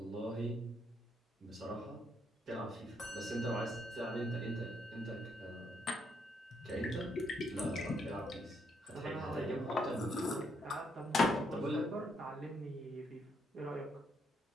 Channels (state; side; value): normal; both; correlation 0.74